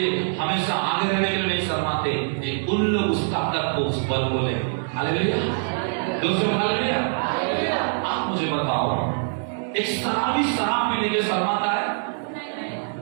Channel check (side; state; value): left; silent; digital silence